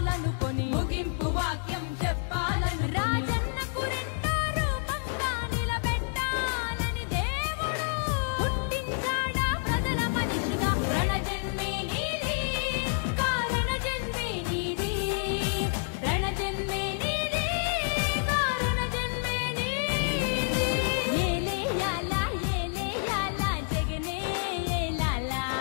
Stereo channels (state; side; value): silent; right; digital silence